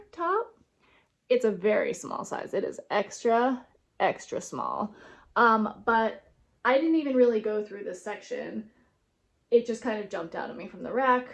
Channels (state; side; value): identical; both; correlation 1.00